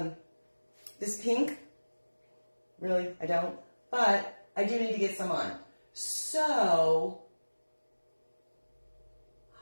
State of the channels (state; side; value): inverted; both; correlation -1.00